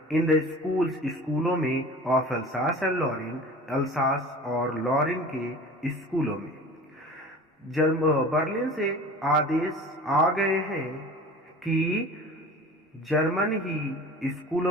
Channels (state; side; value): normal; both; correlation 0.40